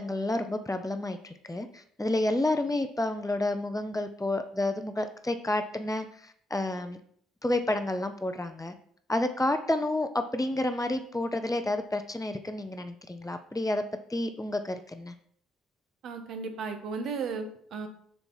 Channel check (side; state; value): both; normal; correlation 0.84